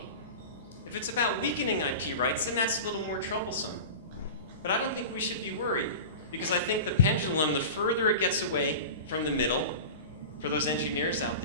If it's about weakening IP rights, then that's a little more troublesome. But I don't think we should be worried, because I think the pendulum, the further it gets away from the middle, for those engineers out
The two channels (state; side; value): inverted; both; correlation -0.32